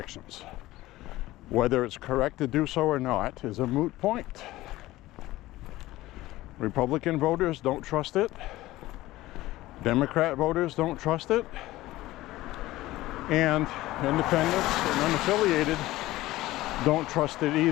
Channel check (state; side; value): quieter; right; 17.1 dB